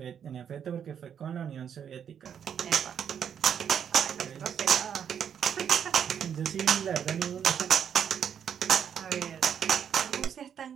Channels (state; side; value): quieter; left; 8.3 dB